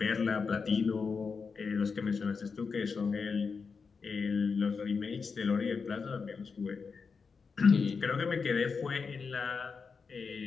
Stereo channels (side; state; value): right; quieter; 5.2 dB